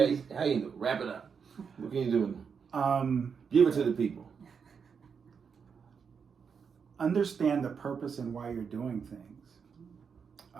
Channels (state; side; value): quieter; left; 6.3 dB